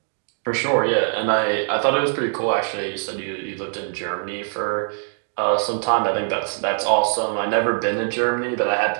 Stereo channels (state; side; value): silent; left; 60 dB below the other